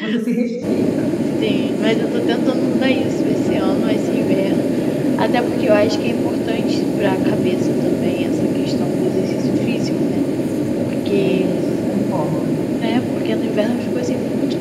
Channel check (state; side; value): identical; both; correlation 1.00